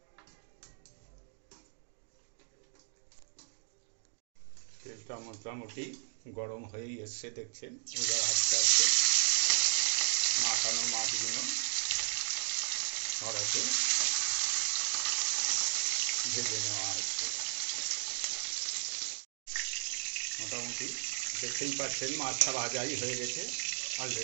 তেলটা মোটামুটি গরম হয়েই এসছে, দেখছেন। এবার আস্তে আস্তে মাখানো মাছগুলো কড়াতে ভেজে নেওয়া হচ্ছে। মোটামুটি দেখতেই পাচ্ছেন মাছটা ভাজাই হয়ে গেছে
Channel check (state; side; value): silent; left; digital silence